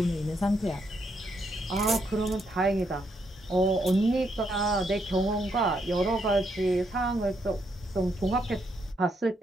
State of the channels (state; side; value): normal; both; correlation 0.76